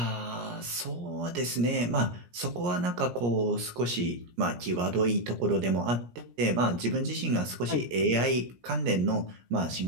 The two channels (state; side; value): late; left; 17 ms